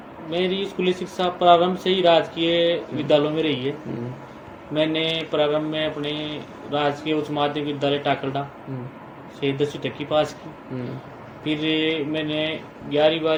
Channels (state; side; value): identical; both; correlation 1.00